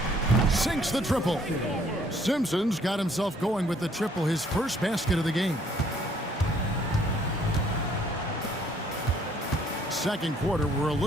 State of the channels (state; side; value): normal; both; correlation 0.63